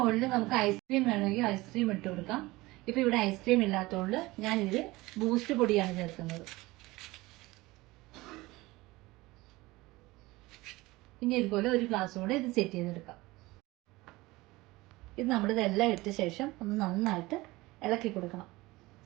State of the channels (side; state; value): left; quieter; 20.5 dB